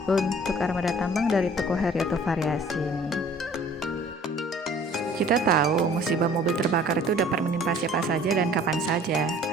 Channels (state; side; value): normal; both; correlation 0.51